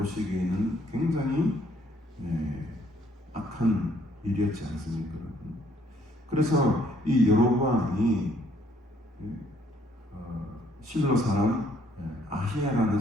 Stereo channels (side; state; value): both; normal; correlation 0.65